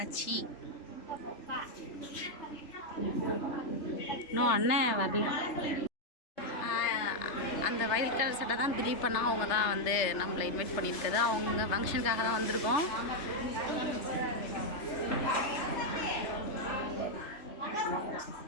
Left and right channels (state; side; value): late; right; 3.3 ms